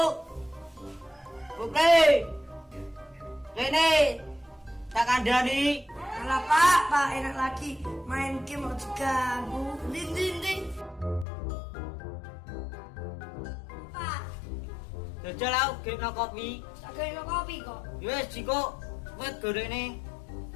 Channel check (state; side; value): drops out; right; at 11.2 s